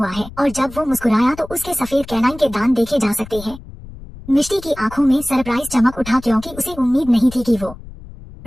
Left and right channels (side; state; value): left; noise; rumble, 16 dB below the sound